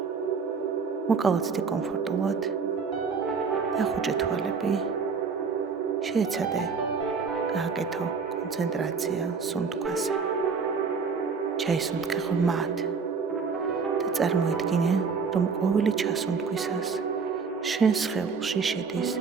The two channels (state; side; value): quieter; left; 5.3 dB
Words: მოკალათდი კომფორტულად და ხუჭე თვალები, შეეცადე გააკეთო კონცენტრაცია სუნთქვაზე. ჩაისუნთქე ღრმად და წარმოიდგინე, რომ ყოველი ჩასუნთქვისას შენ სხეულში შედის